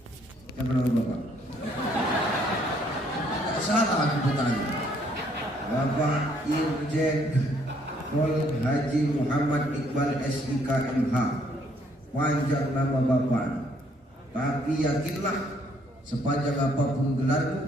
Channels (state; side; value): normal; both; correlation 0.66